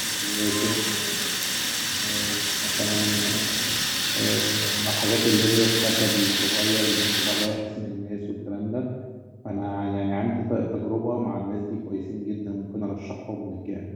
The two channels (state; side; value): identical; both; correlation 1.00